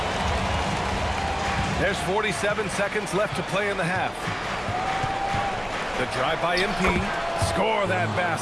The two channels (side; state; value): both; identical; correlation 1.00